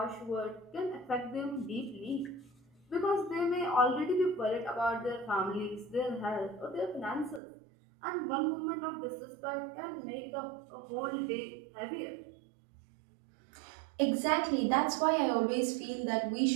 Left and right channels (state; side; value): drops out; left; at 7.4 s